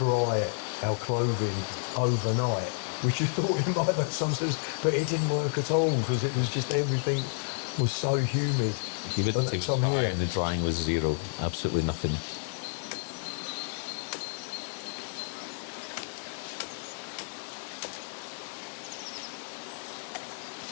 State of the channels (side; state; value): right; silent; digital silence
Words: our clothing overnight, which you thought it might make some sense, but it didn't work at all because it was just everything was so humid. Humidity was high and the drying was zero, absolutely nothing.